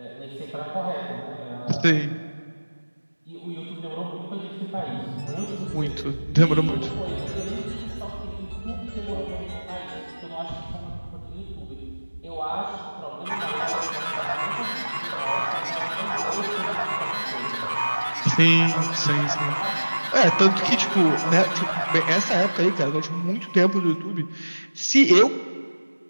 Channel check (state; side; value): inverted; both; correlation -1.00